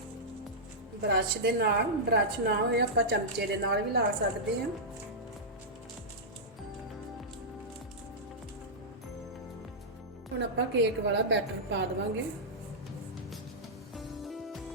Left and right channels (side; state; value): both; normal; correlation -0.11